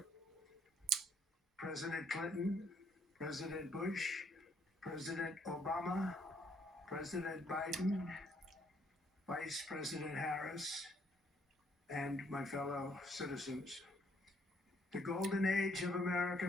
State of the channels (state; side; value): normal; both; correlation 0.67